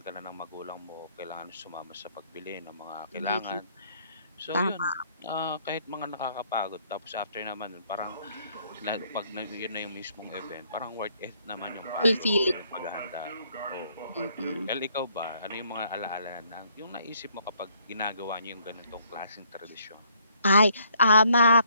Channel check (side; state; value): both; inverted; correlation -0.66